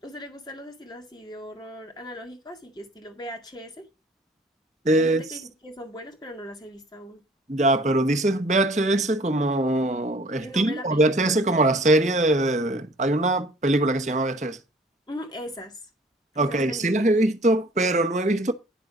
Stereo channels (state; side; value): normal; both; correlation 0.53